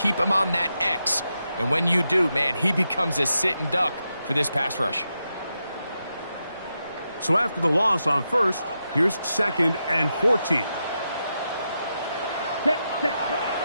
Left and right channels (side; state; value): both; inverted; correlation -0.86